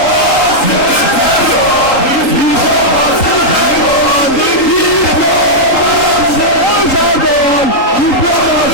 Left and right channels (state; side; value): late; right; 3.8 ms